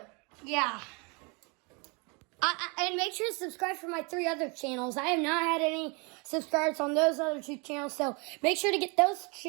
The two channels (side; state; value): left; quieter; 31.0 dB